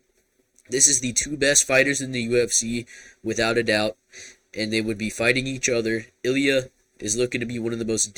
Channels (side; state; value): both; identical; correlation 1.00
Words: this is the two best fighters in the UFC, without a doubt, and they would be fighting each other. Ilya is looking to be one of the most